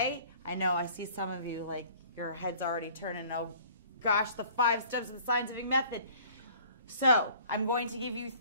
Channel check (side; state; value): both; inverted; correlation -0.52